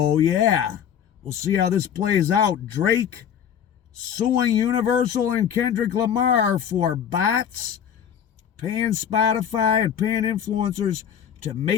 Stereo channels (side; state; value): right; quieter; 8.7 dB